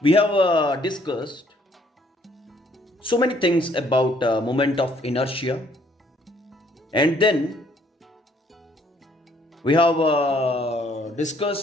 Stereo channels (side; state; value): both; normal; correlation 0.64